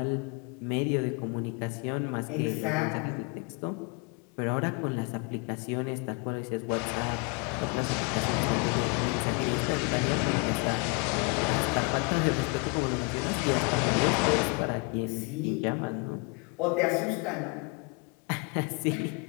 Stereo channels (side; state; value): right; quieter; 32.1 dB